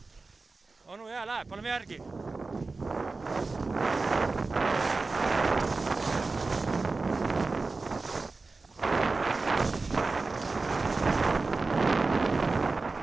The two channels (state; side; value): quieter; left; 3.8 dB